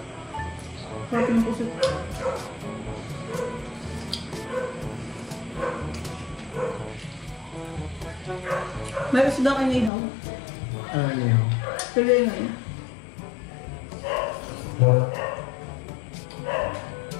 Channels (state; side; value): drops out; right; at 9.9 s